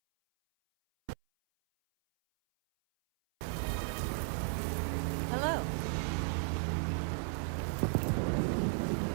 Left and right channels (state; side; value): silent; left; 55 dB below the other